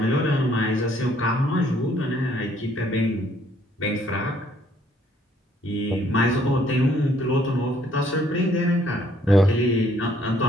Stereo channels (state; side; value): normal; both; correlation 0.64